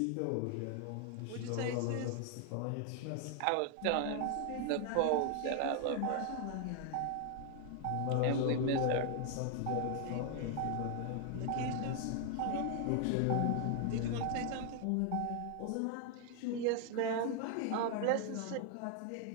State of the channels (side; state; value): both; different; correlation 0.00